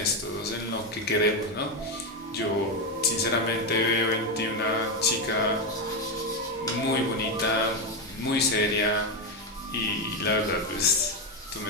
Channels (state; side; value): normal; both; correlation 0.10